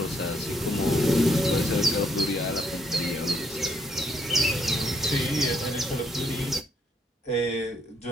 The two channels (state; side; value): normal; both; correlation 0.71